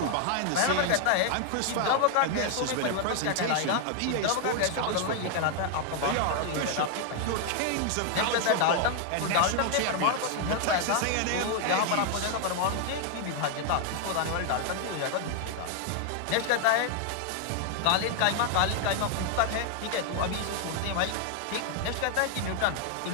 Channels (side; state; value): both; different; correlation 0.00